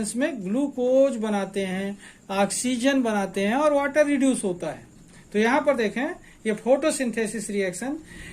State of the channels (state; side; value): identical; both; correlation 1.00